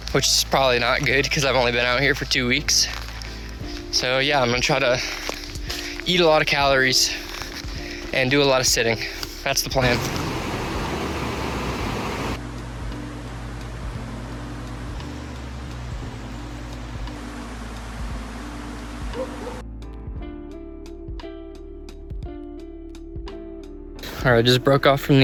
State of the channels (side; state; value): both; identical; correlation 1.00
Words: which is probably not good because I've only been out here for 2 weeks. So yeah, I'm gonna try to eat a lot of calories and do a lot of sitting. That's the plan. All right, I just broke off from